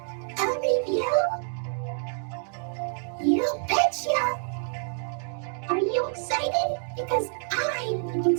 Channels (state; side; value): silent; left; 56 dB below the other